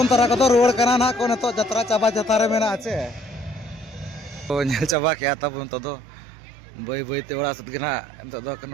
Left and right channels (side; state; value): left; drops out; at 5.0 s